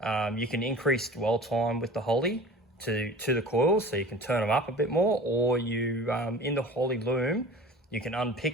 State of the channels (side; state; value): both; normal; correlation 0.40